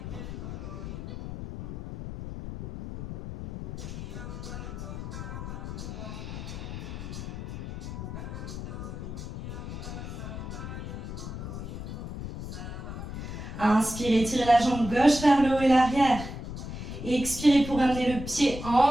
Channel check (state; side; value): noise; left; rumble, 7 dB below the sound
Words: Inspirez, tirez la jambe gauche vers le haut et l'arrière. Expirez pour amener le pied